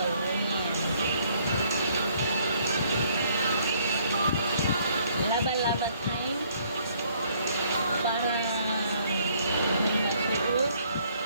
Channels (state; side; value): inverted; both; correlation -0.64